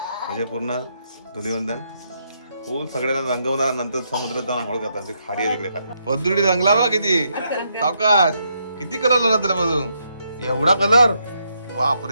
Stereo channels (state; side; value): inverted; both; correlation -0.78